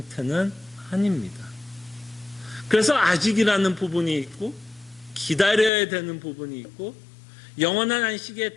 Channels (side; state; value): right; drops out; at 5.7 s